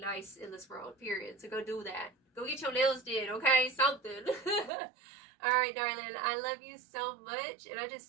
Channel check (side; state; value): left; drops out; at 4.7 s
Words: in this world, period. So go do that. Go get your nails did, okay? Something. All right, darling, I love you so much, and I